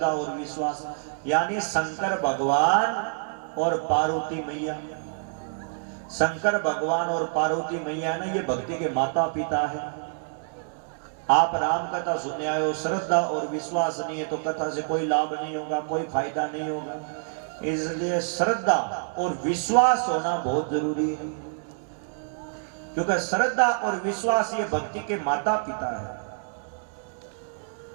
और विश्वास यानी शंकर भगवान और पार्वती मैया। शंकर भगवान और पार्वती मैया ना ये भक्ति के माता पिता है। आप राम कथा सुनने आए हो, श्रद्धा और विश्वास नहीं है तो कथा से कोई लाभ नहीं होगा, कोई फायदा नहीं होगा। इसलिए श्रद्धा और विश्वास होना बहुत जरूरी है, क्योंकि श्रद्धा और विश्वास ये भक्ति के माता पिता है।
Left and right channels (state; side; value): silent; left; digital silence